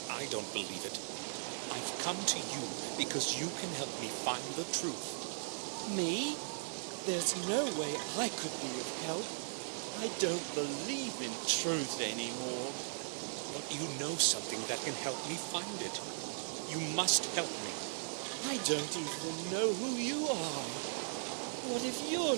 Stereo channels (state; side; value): silent; left; 52 dB below the other